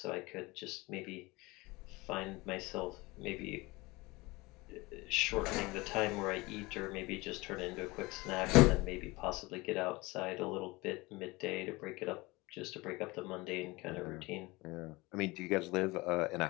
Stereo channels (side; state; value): right; quieter; 22.9 dB